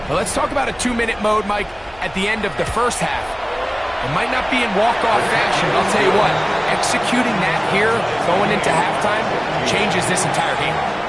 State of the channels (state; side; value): noise; right; hum, 25 dB below the sound